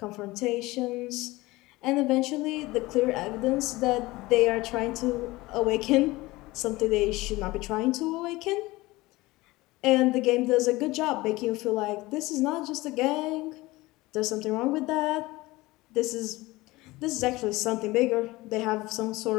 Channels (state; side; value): quieter; right; 20.3 dB